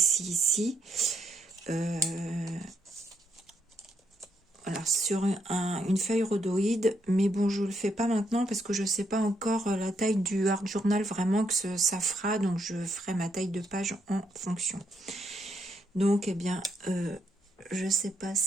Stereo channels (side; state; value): both; normal; correlation 0.76